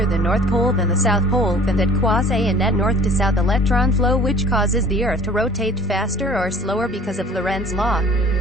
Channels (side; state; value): both; normal; correlation 0.47